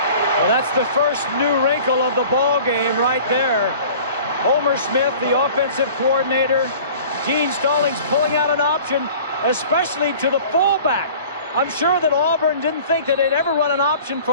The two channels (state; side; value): inverted; both; correlation -0.45